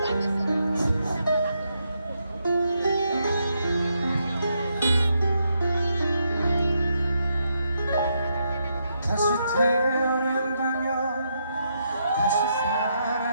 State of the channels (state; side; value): inverted; both; correlation -0.80